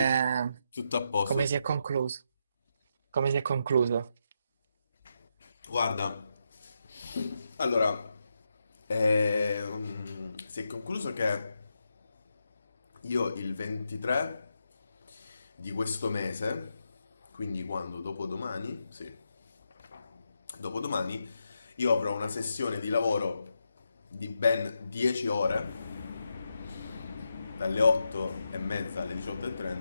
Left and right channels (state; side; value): inverted; both; correlation -0.84